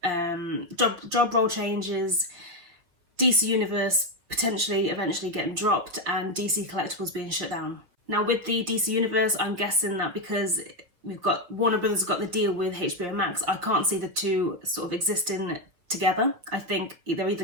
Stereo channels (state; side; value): late; left; 5.9 ms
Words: role changes, DC Universe potentially eventually getting dropped, and DC Collectibles being shut down. Now with the DC Universe, I'm guessing that because Warner Brothers got the deal with HBO Max, I can't see the two sort of existing together. I think they're